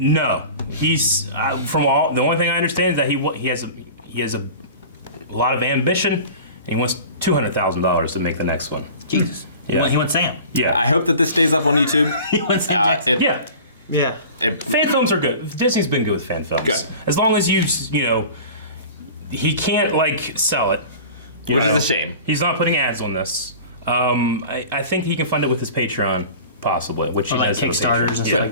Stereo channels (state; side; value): inverted; both; correlation -0.39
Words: He's the only thing I understand is that he has a lot of ambition, and he wants $200,000 to make the next one. Jesus. Yeah. He wants Sam. Yeah. I hope that this stays up on YouTube. He wants Sam. Yeah. Fan films are good. Disney's been good with fan films. Good. As long as he can't sell it. Which is a shame. He's not putting ads on this. I think he can fund it with his Patreon, possibly, which he like does. Kickstarters and stuff